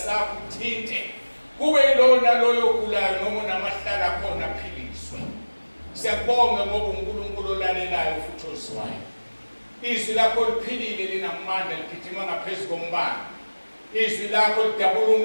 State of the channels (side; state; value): both; inverted; correlation -1.00